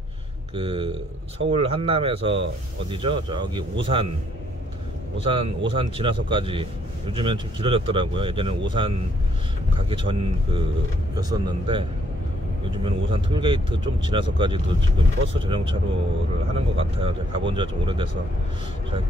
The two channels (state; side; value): normal; both; correlation 0.68